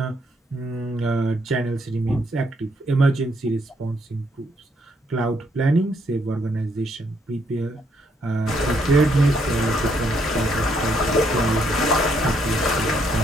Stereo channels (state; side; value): normal; both; correlation 0.73